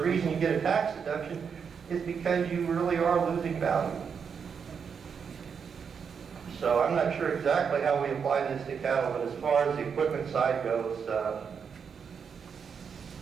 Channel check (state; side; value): quieter; left; 6.5 dB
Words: you get a tax deduction is because you really are losing value. So I'm not sure exactly how we apply this to cattle, but as far as the equipment side goes,